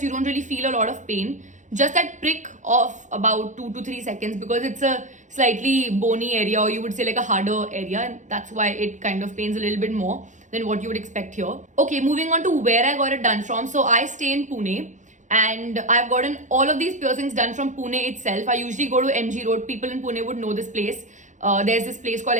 you don't really feel a lot of pain. Just that prick of about 2 to 3 seconds, because it's a slightly bony area, or you would say like a harder area, and that's why it kind of pains a little bit more than what you would expect here. Okay, moving on to where I got it done from. So I stay in Pune, and I've gotten all of these piercings done from Pune itself. I usually go to MG Road. People in Pune would know this place. There's this place called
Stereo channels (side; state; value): left; late; 0.36 ms